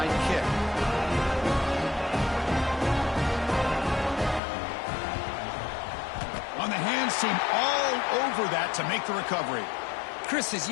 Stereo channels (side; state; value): right; drops out; at 4.4 s